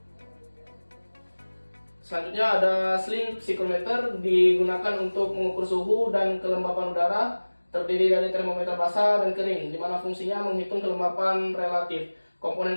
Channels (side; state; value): both; inverted; correlation -1.00